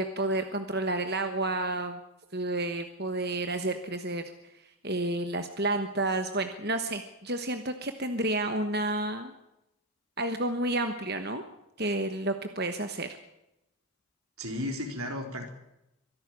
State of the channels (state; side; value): normal; both; correlation 0.03